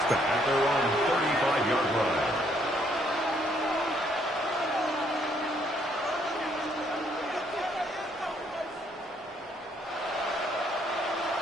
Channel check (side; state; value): both; normal; correlation 0.69